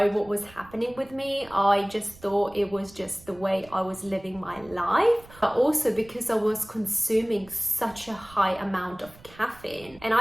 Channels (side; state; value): right; noise; rumble, 23 dB below the sound